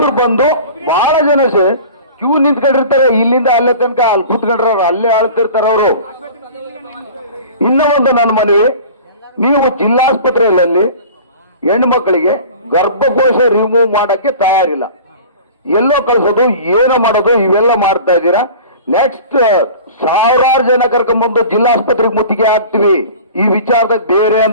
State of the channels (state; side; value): inverted; both; correlation -0.41